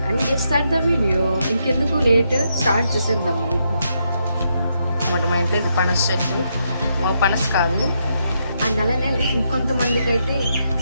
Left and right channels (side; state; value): both; inverted; correlation -0.79